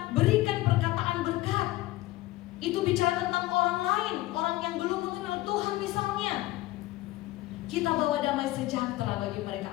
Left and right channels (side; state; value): right; quieter; 17.5 dB